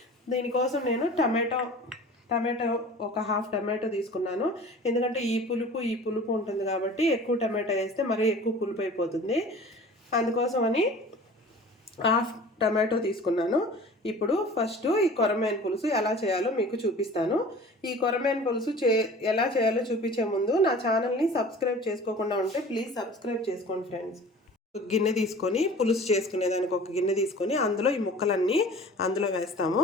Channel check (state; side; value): normal; both; correlation 0.43